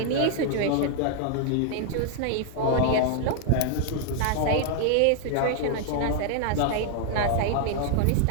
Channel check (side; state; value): both; different; correlation 0.00